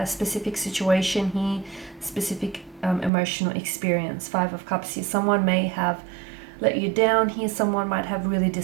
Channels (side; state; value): left; drops out; at 3.1 s